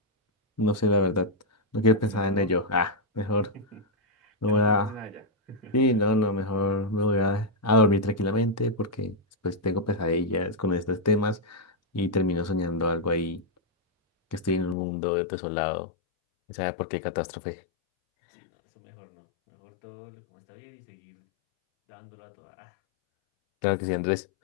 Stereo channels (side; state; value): right; drops out; at 14.8 s